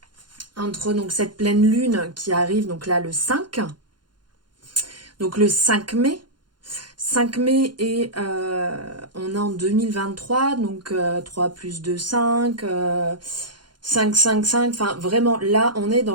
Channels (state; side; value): late; left; 0.71 ms